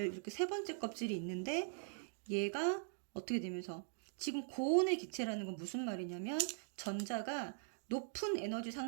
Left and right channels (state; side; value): silent; left; digital silence